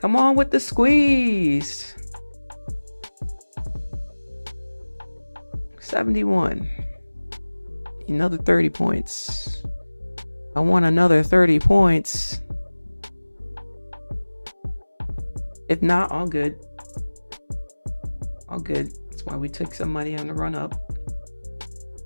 Come on with the squeeze. 71. Another 30 points. I want another 30 points. If not, all good. All good. That's why we took some money on the run up.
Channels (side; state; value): both; inverted; correlation -1.00